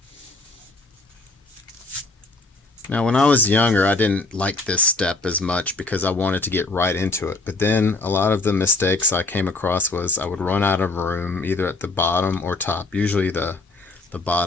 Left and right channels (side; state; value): right; quieter; 3.3 dB